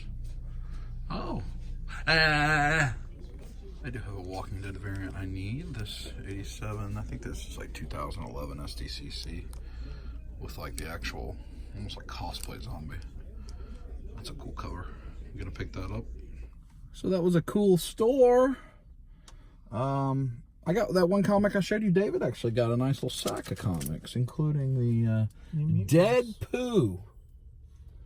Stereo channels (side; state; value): both; identical; correlation 1.00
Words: Oh. I do have a Walking Dead variant I need. This 87, I think this is like 2011 SDCC with like the actual, almost like cosplay zombie. That's a cool cover. You gonna pick that up? So that was a cool store. I got that one comic I showed you. David actually got a nice little sack of comics, including the Dead Pooh.